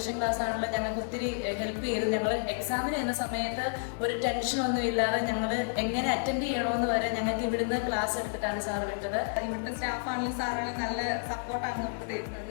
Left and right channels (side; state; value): right; silent; digital silence